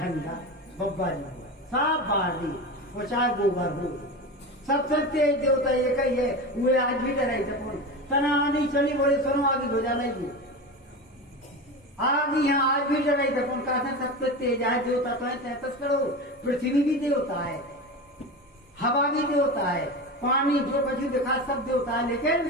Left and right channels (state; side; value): normal; both; correlation 0.25